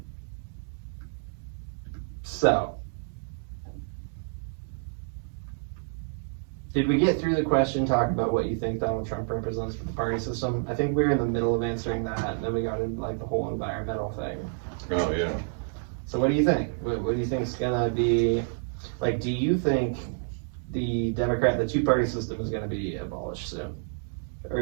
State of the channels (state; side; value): silent; left; 59 dB below the other